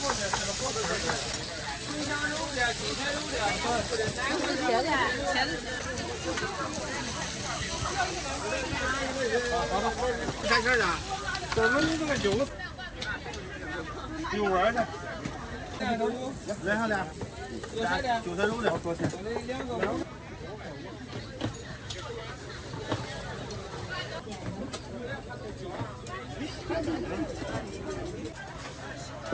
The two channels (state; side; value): identical; both; correlation 1.00